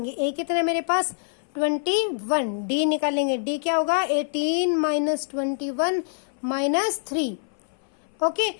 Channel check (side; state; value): right; silent; 59 dB below the other